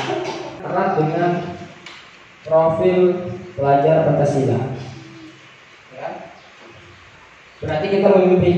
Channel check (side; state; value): both; identical; correlation 1.00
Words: erat dengan profil pelajar Pancasila. Ya. Berarti kita